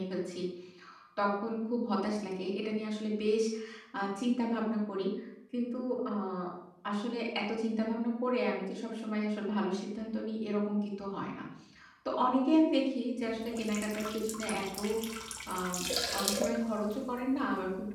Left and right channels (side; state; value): both; identical; correlation 1.00